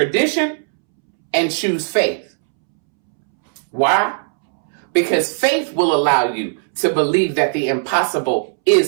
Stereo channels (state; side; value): silent; left; 68 dB below the other